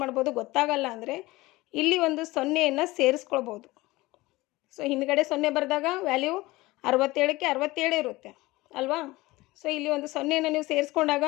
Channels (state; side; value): quieter; right; 20.1 dB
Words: ಮಾಡ್ಬೋದು? ಗೊತ್ತಾಗಲ್ಲ ಅಂದರೆ ಇಲ್ಲಿ ಒಂದು 0ಯನ್ನು ಸೇರಿಸ್ಕೊಳ್ಬೋದು. ಸೊ ಹಿಂದ್ಗಡೆ 0 ಬರೆದಾಗ ವ್ಯಾಲ್ಯೂ 67ಕ್ಕೆ 67 ಇರುತ್ತೆ ಅಲ್ವಾ? ಸೊ ಇಲ್ಲಿ ಒಂದು 0ಯನ್ನು ನೀವು ಸೇರಿಸ್ಕೊಂಡಾಗ